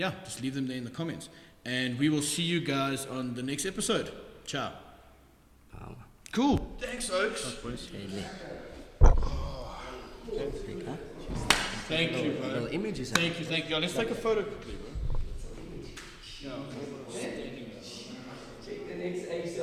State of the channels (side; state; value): both; identical; correlation 1.00